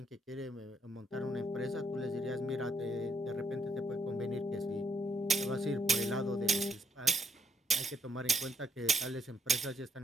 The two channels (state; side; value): normal; both; correlation 0.73